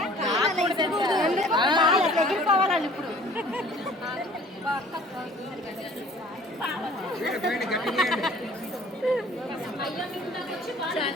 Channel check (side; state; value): both; normal; correlation 0.51